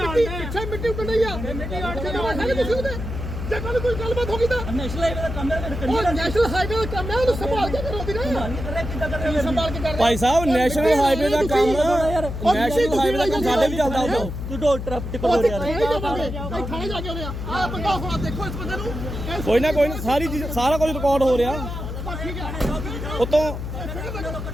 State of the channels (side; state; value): left; noise; hum, 6 dB below the sound